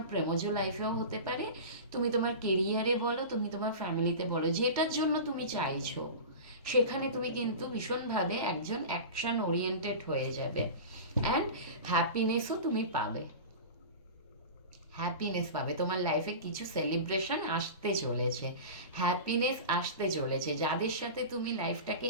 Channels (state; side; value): inverted; both; correlation -0.30